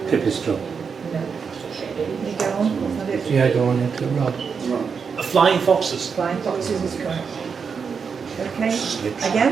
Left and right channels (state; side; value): quieter; left; 6.0 dB